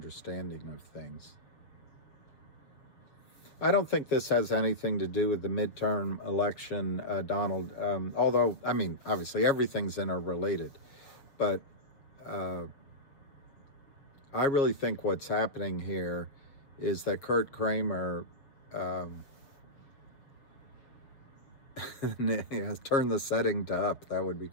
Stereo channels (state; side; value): late; right; 7.3 ms